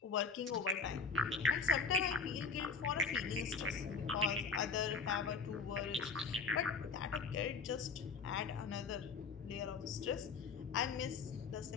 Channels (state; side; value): quieter; right; 4.8 dB